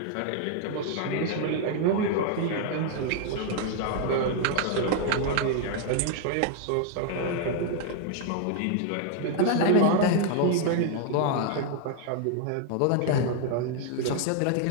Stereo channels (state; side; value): different; both; correlation 0.00